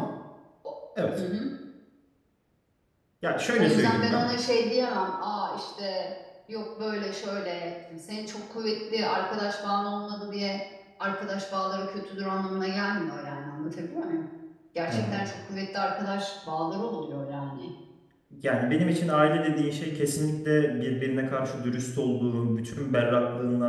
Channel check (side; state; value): both; identical; correlation 1.00